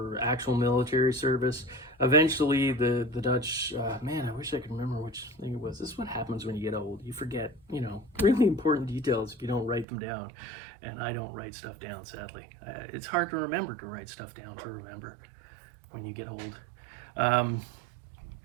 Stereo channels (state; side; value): drops out; left; at 9.9 s